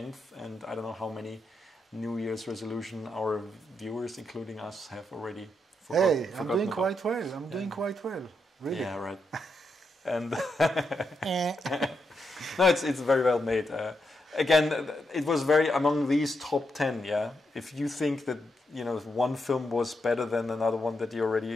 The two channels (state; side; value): normal; both; correlation 0.83